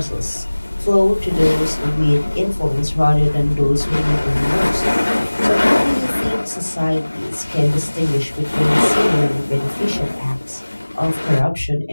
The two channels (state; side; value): inverted; both; correlation -1.00